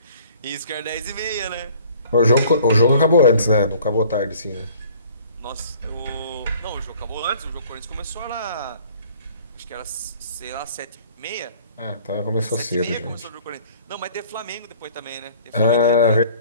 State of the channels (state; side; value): inverted; both; correlation -0.53